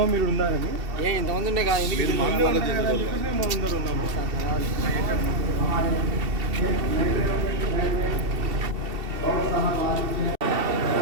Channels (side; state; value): left; late; 2.7 ms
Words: మీరు ఉన్నారని ఇంతమంది ఉండే కదా ఎందుకు అందరూ ఉన్నాము.